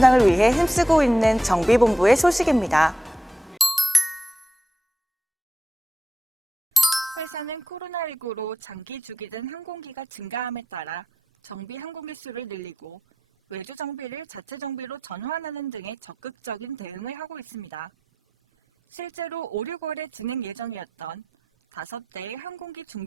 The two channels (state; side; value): normal; both; correlation 0.88